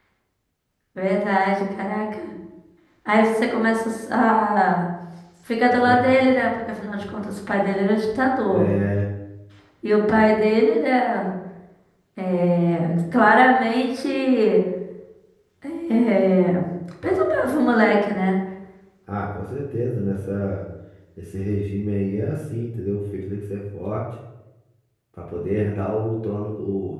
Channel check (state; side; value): identical; both; correlation 1.00